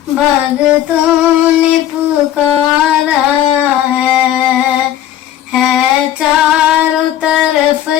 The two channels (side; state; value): right; quieter; 11.7 dB